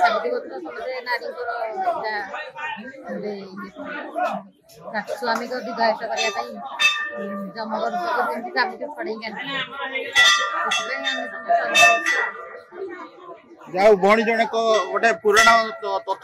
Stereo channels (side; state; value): both; identical; correlation 1.00